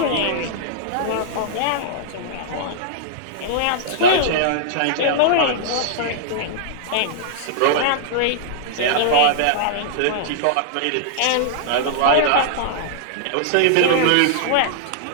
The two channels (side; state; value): both; different; correlation -0.02